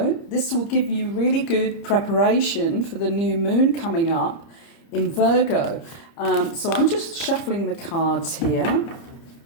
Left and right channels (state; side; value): late; right; 30 ms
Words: this will give you really good preparation for the new moon coming up in Virgo. So I'm just shuffling the cards here.